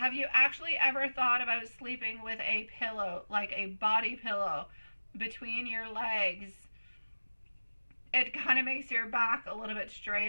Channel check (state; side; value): inverted; both; correlation -1.00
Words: you actually ever thought about sleeping with a pillow, like a body pillow, between your legs? It kind of makes your back a little bit